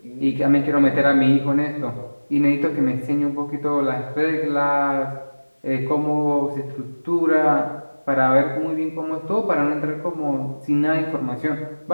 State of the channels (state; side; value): inverted; both; correlation -1.00